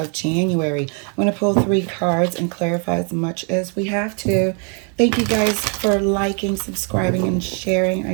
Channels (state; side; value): quieter; left; 38.7 dB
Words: January. I'm going to pull 3 cards and clarify as much as we have to. Thank you guys for liking, subscribing, and sharing.